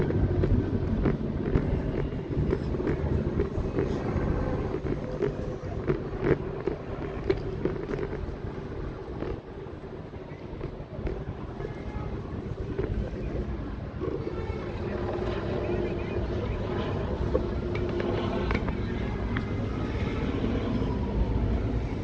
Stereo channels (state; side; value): identical; both; correlation 1.00